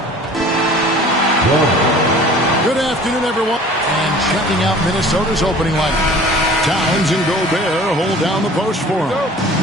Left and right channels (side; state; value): both; normal; correlation 0.46